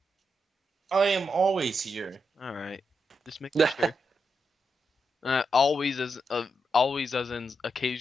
I am always here. All right, just making sure. Always as in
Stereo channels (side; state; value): both; normal; correlation 0.84